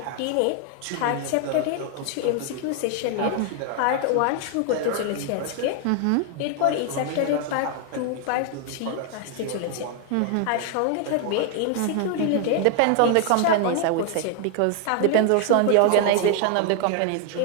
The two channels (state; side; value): different; both; correlation 0.00